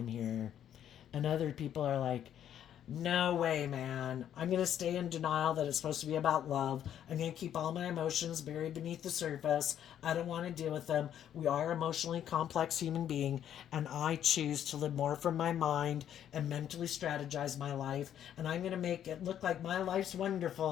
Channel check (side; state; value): right; quieter; 10.1 dB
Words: here. And other people are like, no way, man. I'm going to stay in denial that it's supposed to be about love. I'm going to keep all my emotions buried beneath the surface. I don't want to deal with them. We are emotionally complex human being, and I choose to live more from my mind and mentally strategize my life. And I'm going to make it look like my life's